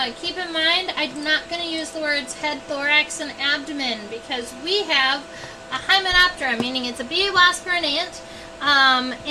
Keep in mind, I'm not going to use the words head, thorax, and abdomen because we have a hymenoptera, meaning it's a bee, wasp, or an ant.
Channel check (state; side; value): identical; both; correlation 1.00